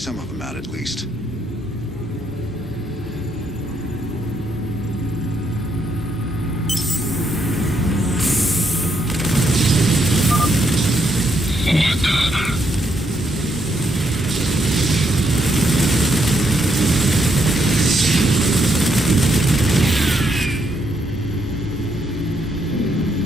of them out at least.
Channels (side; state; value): both; normal; correlation 0.76